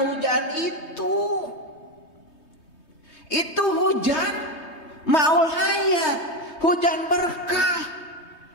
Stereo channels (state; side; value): late; right; 3.2 ms